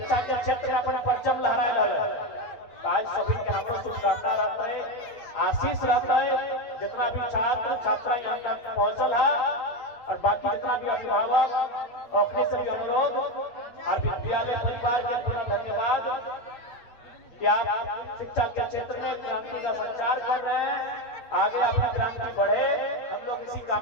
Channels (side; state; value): right; late; 8.7 ms